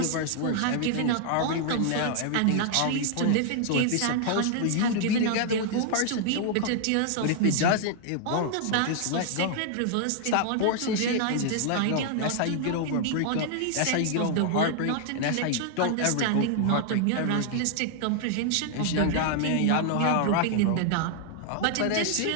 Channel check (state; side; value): different; both; correlation 0.00